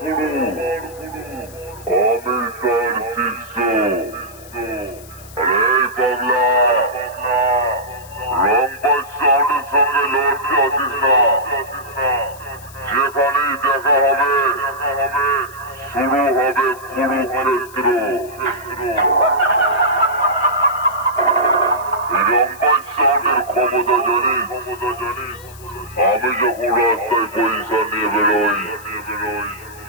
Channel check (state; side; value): noise; left; hiss, 20 dB below the sound